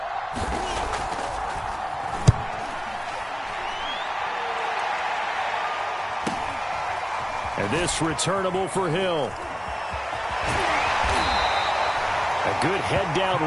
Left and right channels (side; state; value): both; identical; correlation 1.00